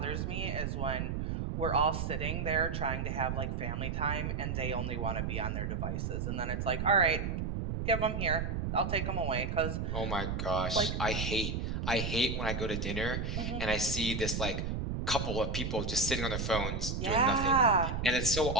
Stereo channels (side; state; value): right; noise; rumble, 2 dB below the sound